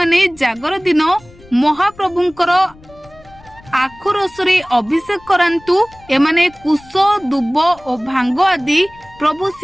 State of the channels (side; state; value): left; noise; rumble, 25 dB below the sound